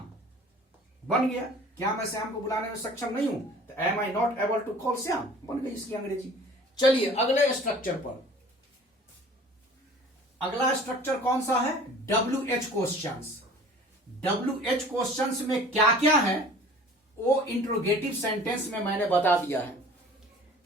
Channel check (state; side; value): normal; both; correlation 0.47